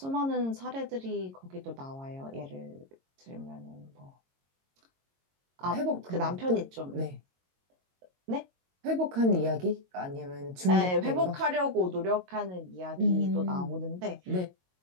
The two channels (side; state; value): left; late; 22 ms